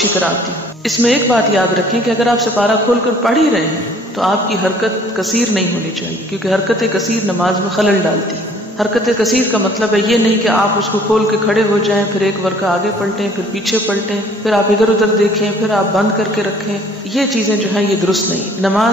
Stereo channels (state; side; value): normal; both; correlation 0.55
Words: طرح آتی. اس میں ایک بات یاد رکھیں کہ اگر آپ سپارہ کھول کر پڑھ ہی رہے ہیں تو آپ کی حرکت کثیر نہیں ہونی چاہیے، کیونکہ حرکت کثیر نماز میں خلل ڈالتی. حرکت کثیر کا مطلب ہے یہ نہیں کہ آپ اس کو کھول کے کھڑے ہو جائیں، پھر ایک ورقہ آگے پلٹیں، پھر پیچھے پلٹیں، پھر آپ ادھر ادھر دیکھیں، پھر آپ بند کر کے رکھیں. یہ چیزیں جو ہیں یہ درست نہیں.